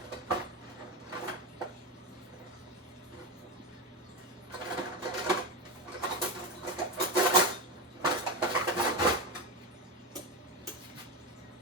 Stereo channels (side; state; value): both; normal; correlation 0.16